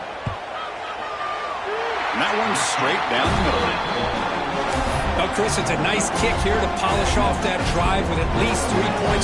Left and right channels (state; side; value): identical; both; correlation 1.00